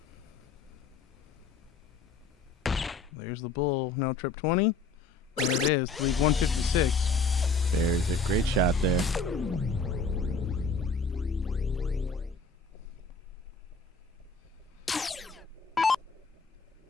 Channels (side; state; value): right; quieter; 3.9 dB